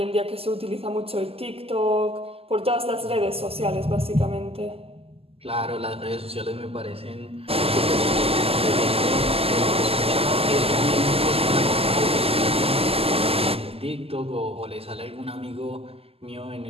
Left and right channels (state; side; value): late; left; 0.28 ms